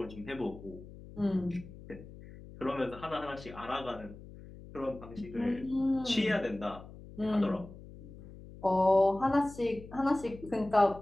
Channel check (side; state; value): left; noise; hum, 16 dB below the sound